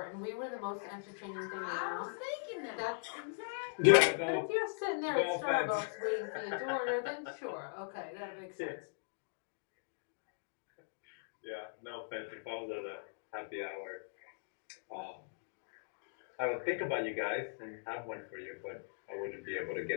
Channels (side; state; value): right; silent; digital silence